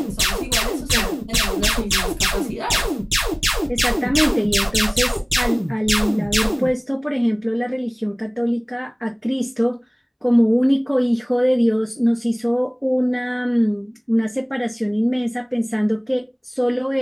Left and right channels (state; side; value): identical; both; correlation 1.00